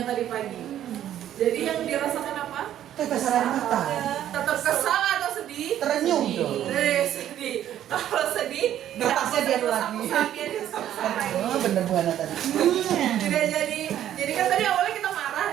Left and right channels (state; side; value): quieter; left; 11.4 dB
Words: tadi pagi. Jadi yang dirasakan apa? Tetes air mata. Tetap kesal atau sedih? Terenyuh dong. Sedih. Kalau sedih, Napasnya dia lagi. Oh, bener Bu Hana tadi. Tidak jadi kan tadi awalnya kita